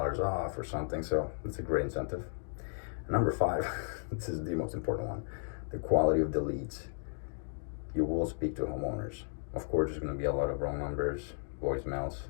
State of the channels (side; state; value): right; silent; digital silence